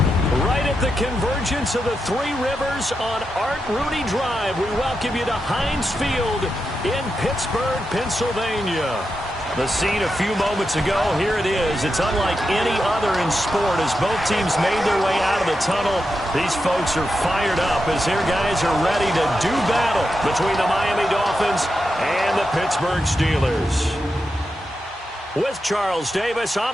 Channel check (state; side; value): normal; both; correlation 0.88